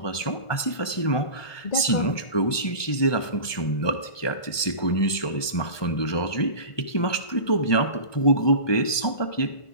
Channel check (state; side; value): late; right; 1.2 ms